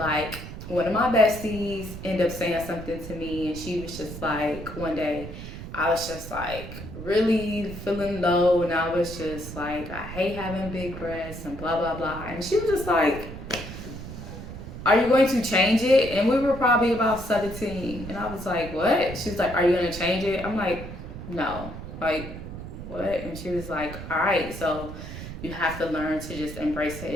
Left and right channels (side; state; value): right; noise; rumble, 10 dB below the sound